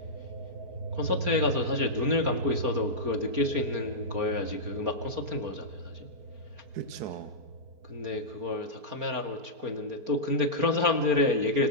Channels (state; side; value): late; left; 4.3 ms